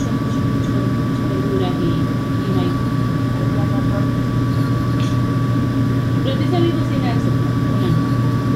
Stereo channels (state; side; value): identical; both; correlation 1.00